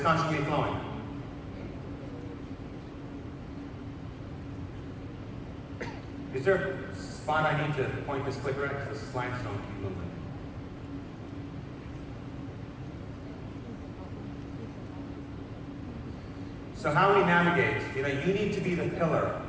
constantly flowing. Is there a spot I need to point this clicker at? Because the slides don't keep moving. So how we navigate, you know, you need to be the pillar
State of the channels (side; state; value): both; identical; correlation 1.00